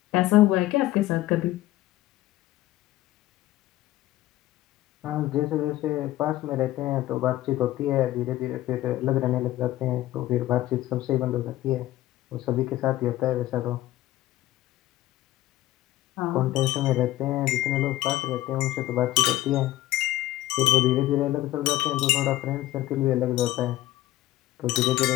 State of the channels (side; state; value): right; quieter; 15.4 dB